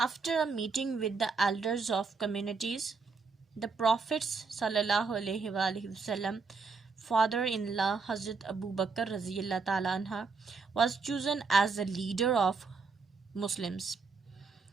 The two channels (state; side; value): quieter; left; 4.7 dB